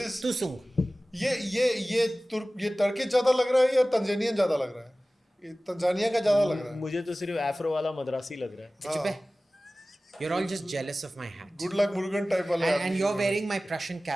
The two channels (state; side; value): normal; both; correlation 0.97